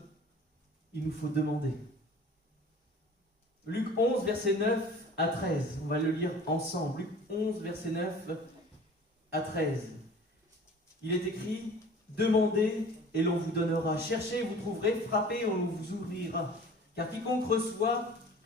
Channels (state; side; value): normal; both; correlation 0.45